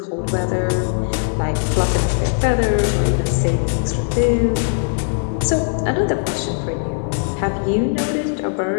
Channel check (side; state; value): right; silent; digital silence